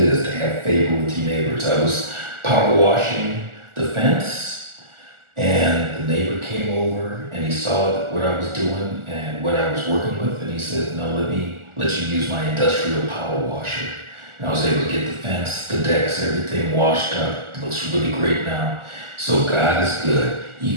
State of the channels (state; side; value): late; left; 1.4 ms